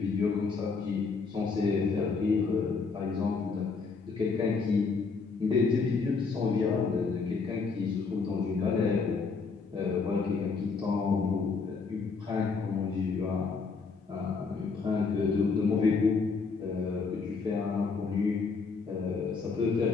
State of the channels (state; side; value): quieter; right; 4.7 dB